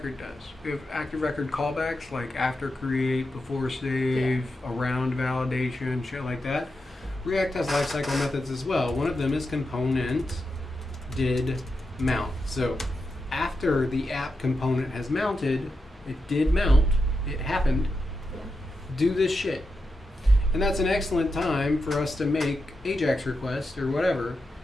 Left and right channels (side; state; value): both; normal; correlation 0.88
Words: does. We have ActiveRecord callbacks like after create, before save, around validation, shit like that. React has lifecycle methods as well. One of them is component did mount. So after the app component has mounted, it did mount, it happened, do this shit. And that's an excellent time for us to make AJAX requests or whatever,